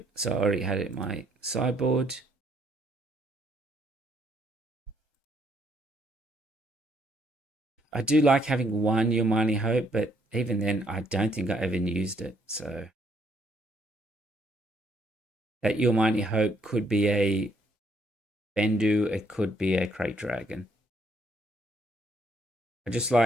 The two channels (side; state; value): both; normal; correlation 0.69